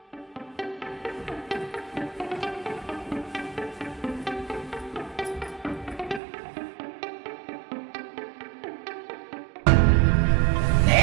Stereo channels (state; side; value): drops out; left; at 6.2 s